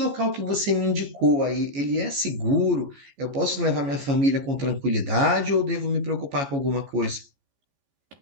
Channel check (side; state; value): left; late; 14 ms